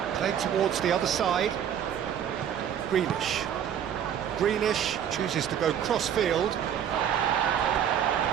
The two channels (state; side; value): quieter; left; 9.2 dB